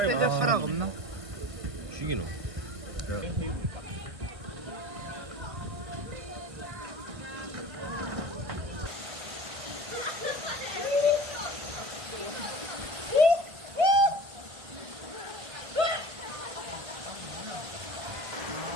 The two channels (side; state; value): left; late; 1.5 ms